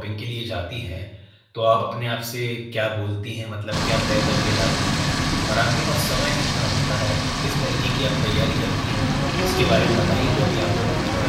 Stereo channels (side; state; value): both; identical; correlation 1.00